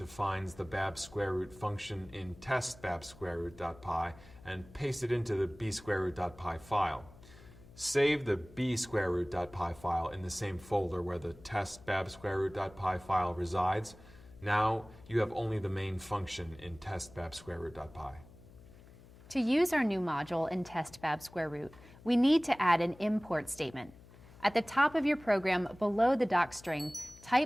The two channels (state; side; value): noise; left; hum, 22 dB below the sound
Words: the bab_root function in test bab_root.py and paste it into the b_root.py file. Save the b_root.py file in the same folder where the test bab_root.py file resides. Now you have only the main function in test bab_root.py. To use our new module in test bab_root, we need to add an import statement. At the top of your program below the docstring,